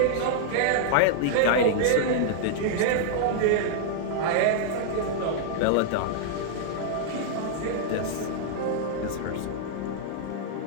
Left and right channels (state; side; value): different; both; correlation -0.01